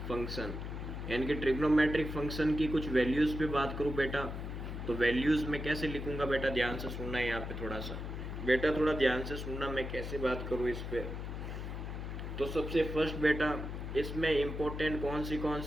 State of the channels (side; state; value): left; noise; hum, 6 dB below the sound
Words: function यानी कि ट्रिग्नोमेट्रिक फंक्शन की कुछ वैल्यूज़ पे बात करूँ बेटा, तो वैल्यूज़ में कैसे लिखूँगा बेटा, ध्यान से सुनना है यहाँ पे थोड़ा सा बेटा, थोड़ा ध्यान से सुनना मैं कैसे बात करूँ इस पे। तो सबसे फर्स्ट बेटा इसमें इम्पोर्टेंट कौन